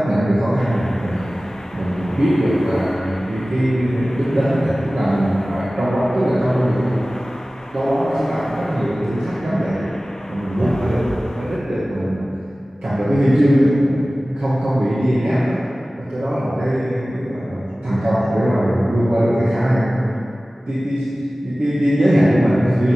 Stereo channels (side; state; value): both; normal; correlation 0.97